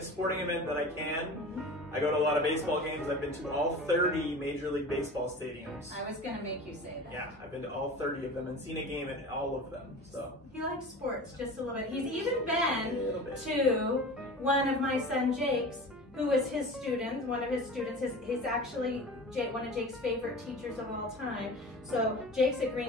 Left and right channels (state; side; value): normal; both; correlation 0.36